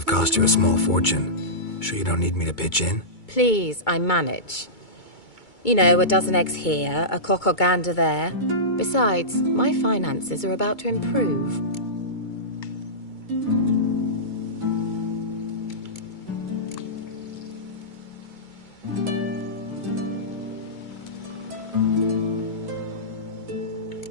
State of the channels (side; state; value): right; late; 2.2 ms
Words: cost you a small fortune. Sure you don't need me to pitch in? Please, I manage. You know, a dozen eggs here, a cock or gander there. Besides, my finances are about to improve.